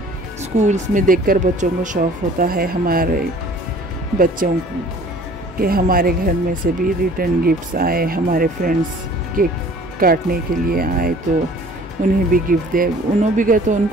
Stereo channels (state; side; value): normal; both; correlation 0.50